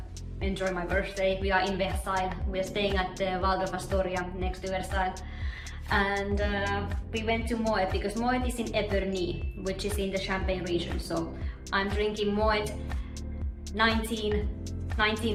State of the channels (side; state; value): both; identical; correlation 1.00